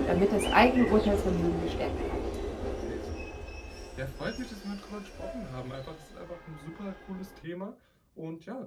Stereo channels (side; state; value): both; identical; correlation 1.00